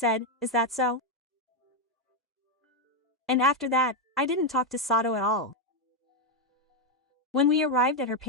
"Is that so?" And after that, I didn't talk to Sato at all. When we arrived at her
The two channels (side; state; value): both; normal; correlation 0.04